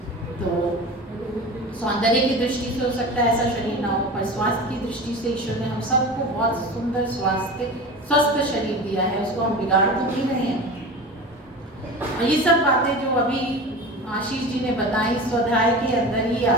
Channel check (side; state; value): both; normal; correlation 0.32